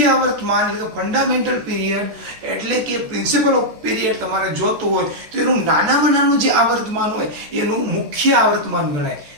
આવર્તમાન એટલે કે ફંડામેન્ટલ પીરિયડ એટલે કે પ્રિન્સિપલ ઓફ પીરિયડ તમારે જોતું હોય તો એનું નાનામાં નાનું જે આવર્તમાન હોય એનું મુખ્ય આવર્તમાન ગણાય.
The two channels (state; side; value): late; left; 14 ms